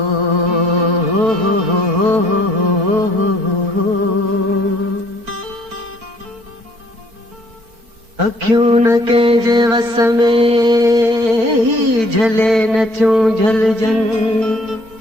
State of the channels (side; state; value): left; late; 4.5 ms